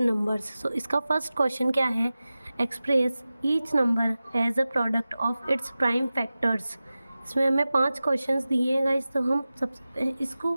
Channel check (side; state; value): both; inverted; correlation -0.96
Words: नंबर्स। सो इसका फर्स्ट क्वेश्चन क्या है? Express each number as a product of its prime factors. इसमें हमें 5 क्वेश्चंस दिए हैं गाइस। तो हम सबसे इसको